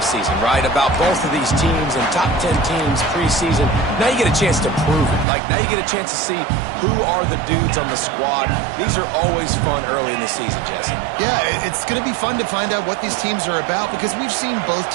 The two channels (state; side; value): drops out; left; at 5.2 s